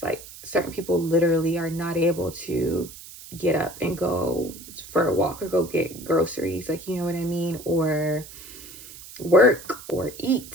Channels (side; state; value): right; noise; hiss, 16 dB below the sound